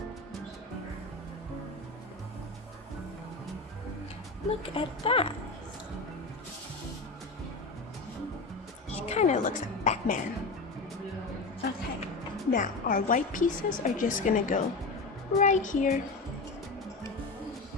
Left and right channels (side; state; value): right; quieter; 3.5 dB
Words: Look at that. He kind of looks like Batman. Okay, now our white pieces are just gonna go right here.